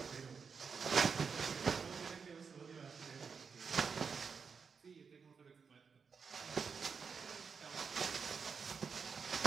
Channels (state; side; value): quieter; left; 5.7 dB